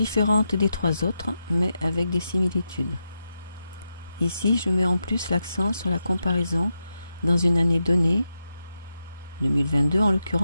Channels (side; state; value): both; inverted; correlation -0.87